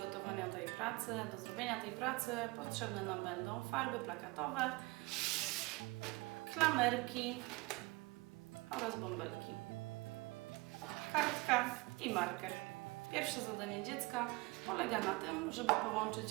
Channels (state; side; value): quieter; left; 24.3 dB